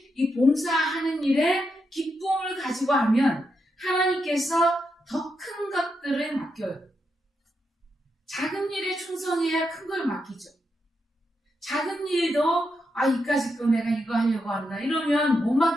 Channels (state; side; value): normal; both; correlation 0.83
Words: 이 봉사하는 일에 기쁨을 가지고 하면 하나님께서 더 큰 것들을 맡겨요. 작은 일에 충성해야 큰 걸 맡기죠. 작은 일도 이까짓 거 내가 이거 하려고 한다 이러면 못